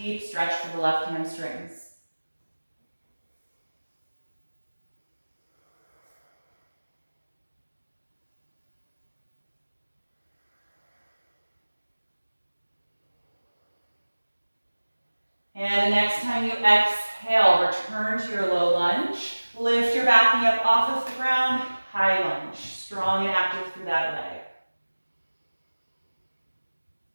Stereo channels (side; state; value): both; inverted; correlation -1.00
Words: stretch for the left hamstrings. And the next time you exhale, return to your low lunge. Lift your back knee up off of the ground, high lunge, strong and active through that leg.